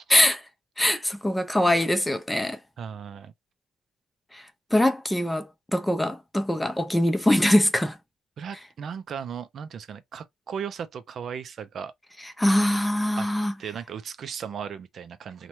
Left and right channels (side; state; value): both; normal; correlation 0.96